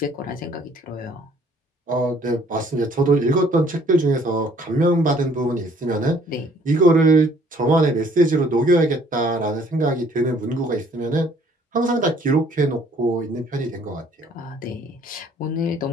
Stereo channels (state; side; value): normal; both; correlation 0.59